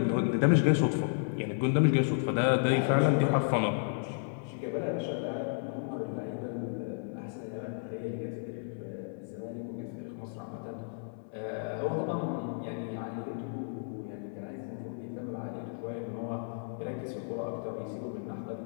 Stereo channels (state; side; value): silent; right; 56 dB below the other